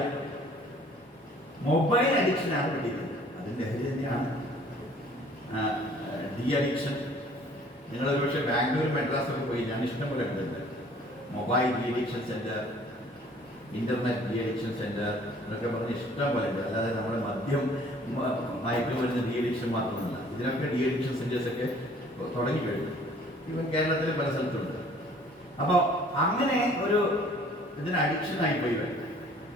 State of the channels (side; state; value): both; normal; correlation 0.55